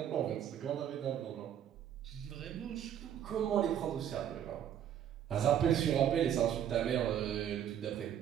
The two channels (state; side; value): quieter; left; 9.8 dB